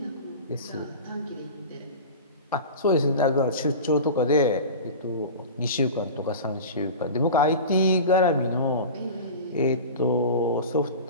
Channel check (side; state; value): both; inverted; correlation -0.32